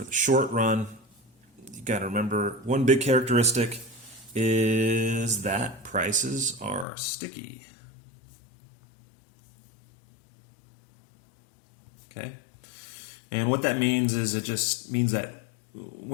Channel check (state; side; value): drops out; right; at 6.9 s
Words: the short run, you got to remember one big characteristic is that prices are sticky. Okay? And what that means is it just means that